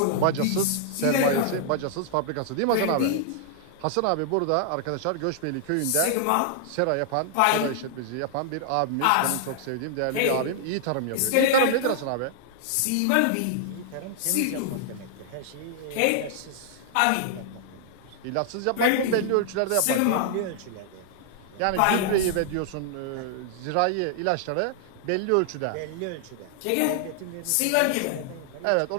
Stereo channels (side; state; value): both; different; correlation -0.01